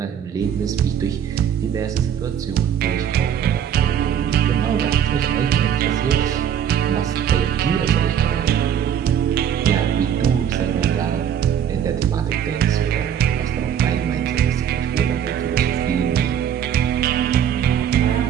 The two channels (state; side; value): quieter; left; 9.1 dB